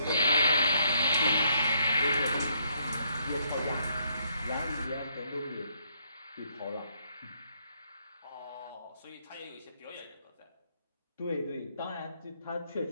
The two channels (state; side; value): inverted; both; correlation -0.71